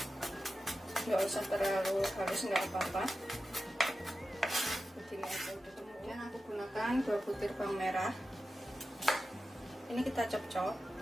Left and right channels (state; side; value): normal; both; correlation 0.92